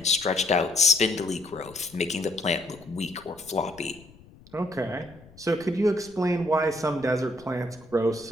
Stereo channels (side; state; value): left; noise; rumble, 24 dB below the sound